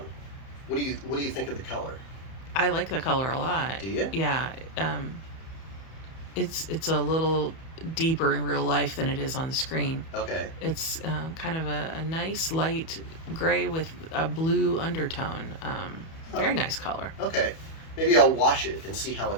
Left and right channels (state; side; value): late; right; 31 ms